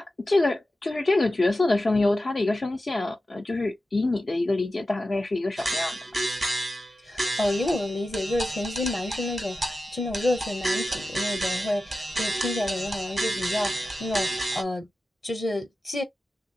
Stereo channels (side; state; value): both; normal; correlation 0.93